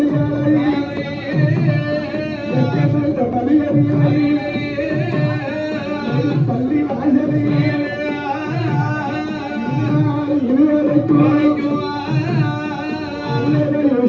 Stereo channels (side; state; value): both; identical; correlation 1.00